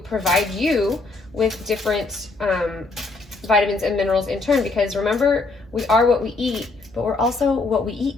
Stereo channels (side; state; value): right; quieter; 3.6 dB